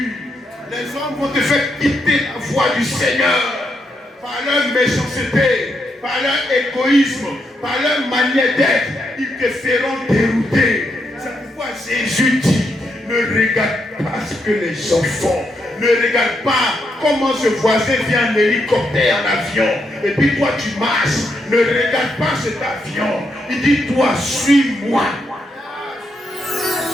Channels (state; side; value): normal; both; correlation 0.80